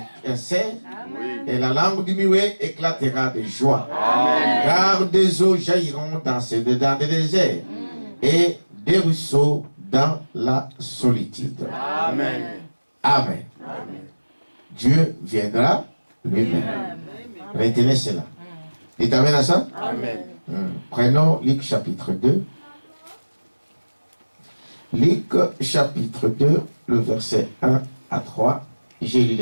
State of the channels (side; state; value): both; inverted; correlation -1.00